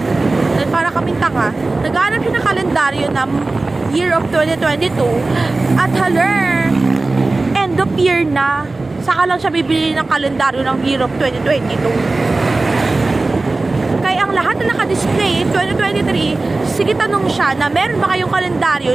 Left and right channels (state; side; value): quieter; left; 3.3 dB